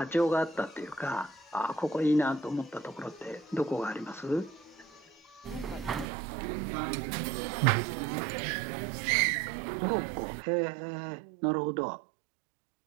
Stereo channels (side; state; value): left; drops out; at 6.1 s